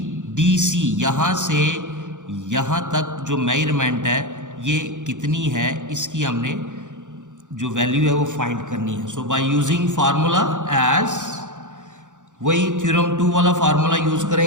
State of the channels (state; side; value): late; left; 0.86 ms